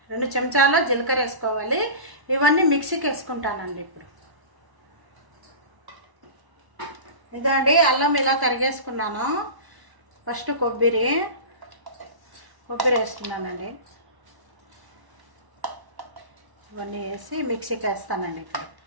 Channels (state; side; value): late; left; 1.1 ms